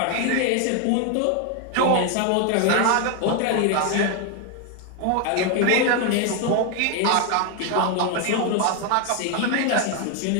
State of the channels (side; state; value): both; different; correlation 0.01